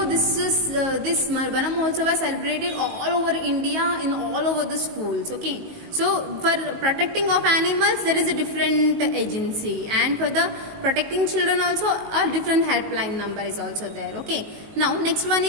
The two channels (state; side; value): late; left; 19 ms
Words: this Vana Mahotsava celebrated all over India, in all over the schools. Okay, so for protecting of animals there is a different agency, and for the protecting children also a different helpline number is also there. Okay, now next one